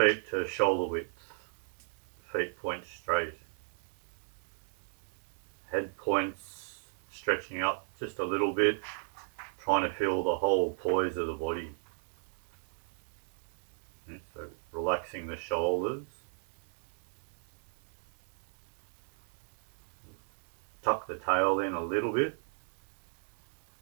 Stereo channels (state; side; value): silent; left; 54 dB below the other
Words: to shoulder width, feet point straight, head points stretching up just a little bit, trying to feel the whole poise of the body. So relaxing the shoulders. Tuck the tail in a little bit.